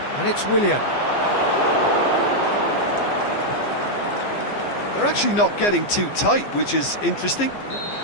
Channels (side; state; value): right; late; 15 ms